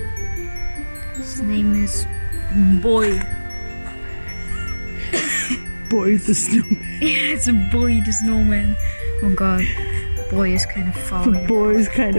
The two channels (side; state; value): both; inverted; correlation -1.00